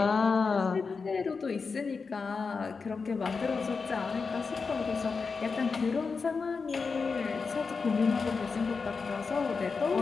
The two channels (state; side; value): quieter; right; 4.9 dB